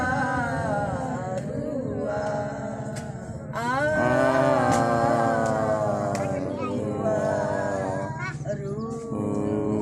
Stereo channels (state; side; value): identical; both; correlation 1.00